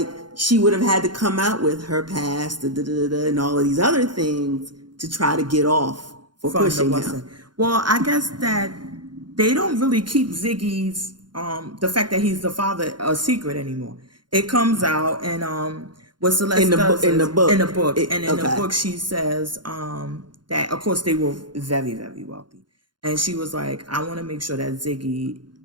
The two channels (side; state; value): left; late; 0.71 ms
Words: she would have had to come out with her past and all of these other things to try to get off for pushing him. Well, I guess that they don't really keep Ziggy's the fact that he's the father a secret anymore. It comes out, and what Celeste does in the book, and in the book she says that of course they were very, very wealthy, and she was like, I want to make sure that Ziggy